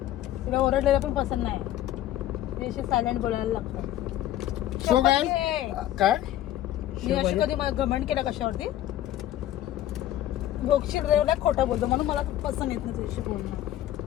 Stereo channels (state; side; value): quieter; right; 13.0 dB